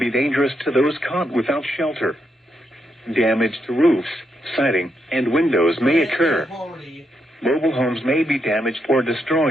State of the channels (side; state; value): both; normal; correlation 0.81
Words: dangerous to those caught without shelter. Damage to roofs, siding, and windows may occur. Mobile homes may be damaged or